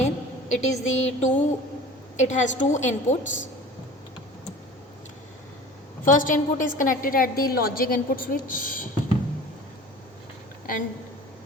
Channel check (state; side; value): normal; both; correlation 0.40